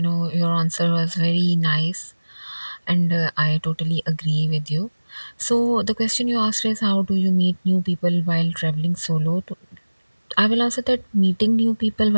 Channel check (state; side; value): inverted; both; correlation -1.00